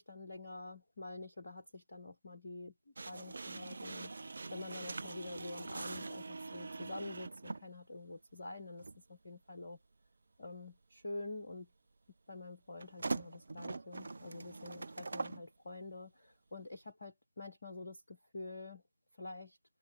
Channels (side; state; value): both; inverted; correlation -0.89